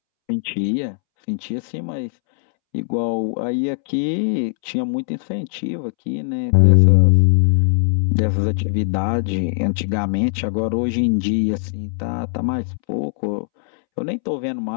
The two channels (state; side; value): silent; right; 66 dB below the other